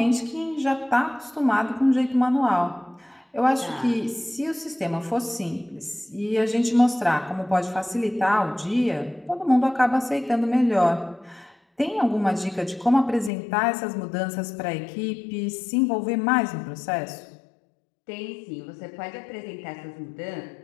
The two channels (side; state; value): right; drops out; at 13.3 s